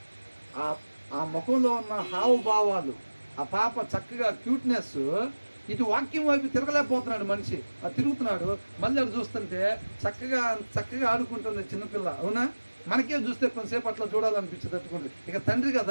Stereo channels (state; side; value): inverted; both; correlation -1.00